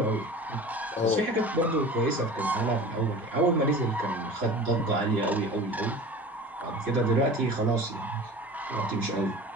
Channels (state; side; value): normal; both; correlation 0.38